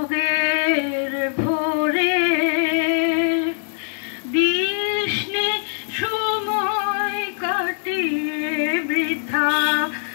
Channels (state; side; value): silent; right; digital silence